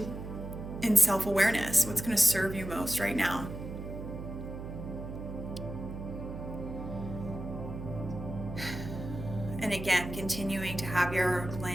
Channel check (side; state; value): right; noise; hum, 8 dB below the sound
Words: in self-awareness. What's going to serve you most right now? And again, continuing to have your